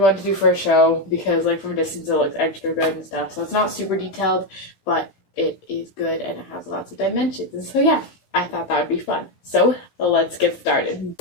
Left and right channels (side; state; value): right; late; 16 ms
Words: to do for a show because like from a distance it looks extra good and stuff. So it's not super detailed, but it is good and it has lots of dimensions. And so yeah, I thought that would be fun. So let's get started.